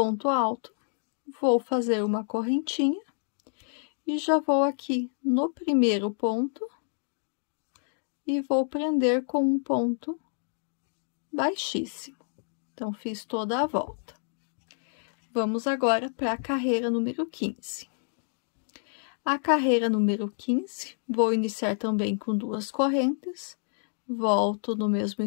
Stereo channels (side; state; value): right; silent; digital silence